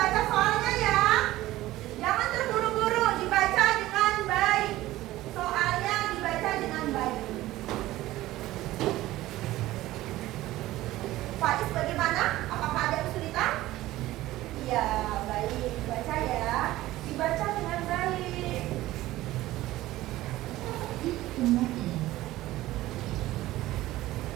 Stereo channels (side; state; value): left; quieter; 16.4 dB